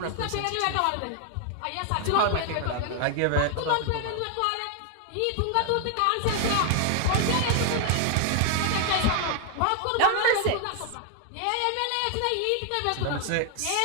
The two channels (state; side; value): different; both; correlation 0.00